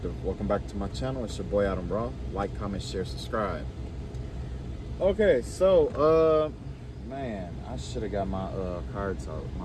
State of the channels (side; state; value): both; identical; correlation 1.00